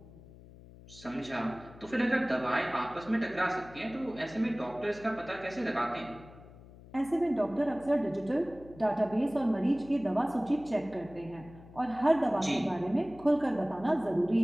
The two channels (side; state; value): left; noise; hum, 20 dB below the sound